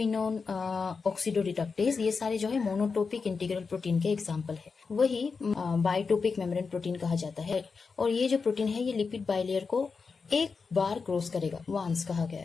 ऑक्सीडोरिडक्टेज। ये सारे जो है मोनोटोपिक इंटीग्रल प्रोटीन के एग्जाम्पल है। वही बायोटोपिक मेम्ब्रेन प्रोटीन कहा जाता है। और ये जो प्रोटीन है ये लिपिड बाइलेयर को एक बार क्रॉस करेगा, वंस कहा गया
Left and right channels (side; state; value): right; quieter; 5.0 dB